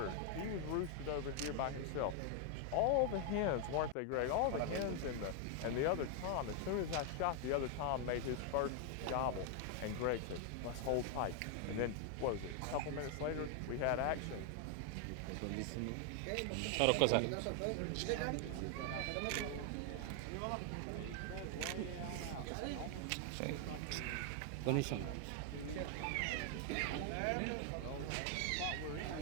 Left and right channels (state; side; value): different; both; correlation 0.00